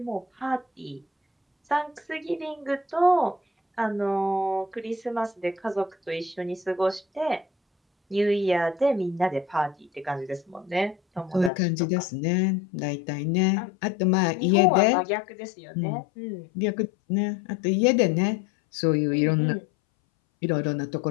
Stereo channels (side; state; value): right; drops out; at 11.5 s